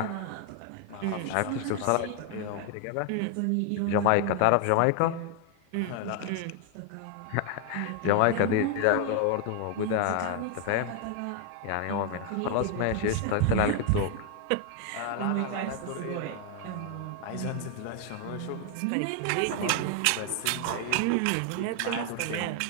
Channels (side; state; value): both; different; correlation 0.00